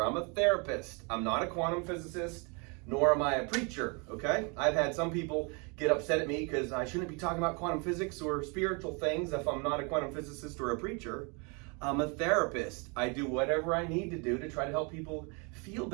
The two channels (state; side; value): quieter; left; 32.6 dB